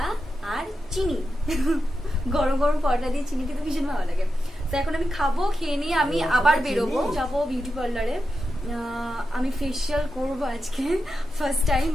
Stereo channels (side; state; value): both; normal; correlation 0.89